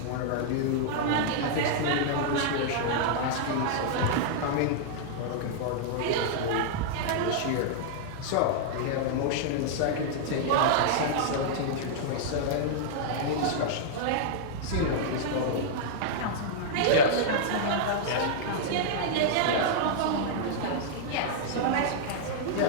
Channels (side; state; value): both; different; correlation -0.01